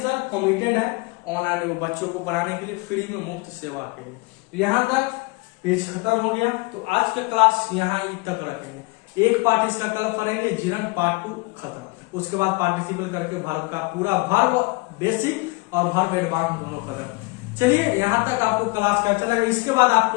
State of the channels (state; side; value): quieter; right; 25.9 dB